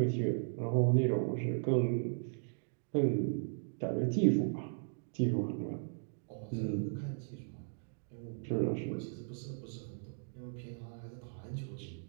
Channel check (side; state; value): left; silent; digital silence